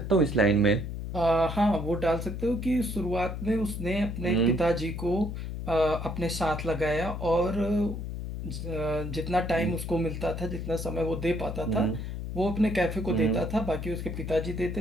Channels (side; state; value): left; noise; hum, 6 dB below the sound